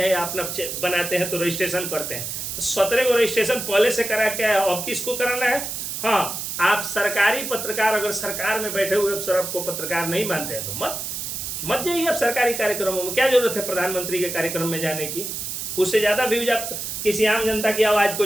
या अपना बनाते हैं तो रजिस्ट्रेशन करते हैं। 17 को रजिस्ट्रेशन पहले से करा के है, अब किसको कराना है? हाँ, आप सरकारी पत्रकार, अगर सरकार में बैठे हुए अफसर आपको पत्रकार नहीं मानते हैं तो मत जाइए आप सरकारी कार्यक्रमों में। क्या जरूरत है प्रधानमंत्री के कार्यक्रम में जाने की? उससे ज़्यादा व्यूज आप किसी आम जनता की आवाज़ को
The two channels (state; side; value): noise; right; hiss, 5 dB below the sound